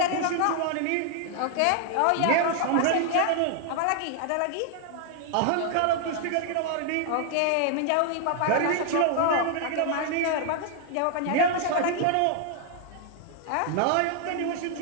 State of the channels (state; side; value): different; both; correlation 0.00